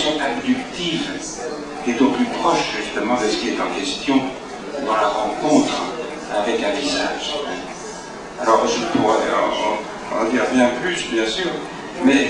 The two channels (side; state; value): both; identical; correlation 1.00